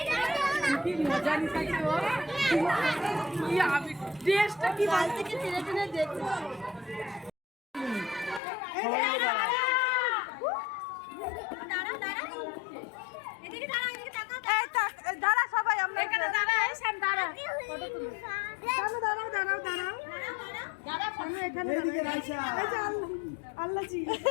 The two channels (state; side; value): drops out; right; at 8.4 s